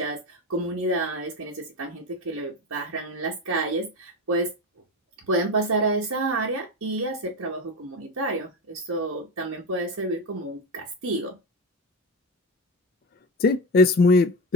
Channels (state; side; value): normal; both; correlation 0.19